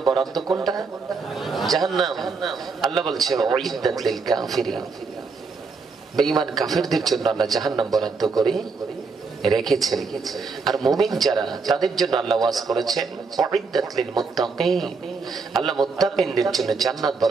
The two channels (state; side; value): quieter; left; 4.7 dB